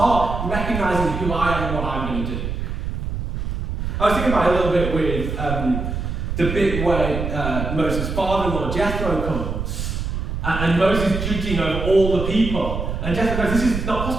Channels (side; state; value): right; noise; rumble, 4 dB below the sound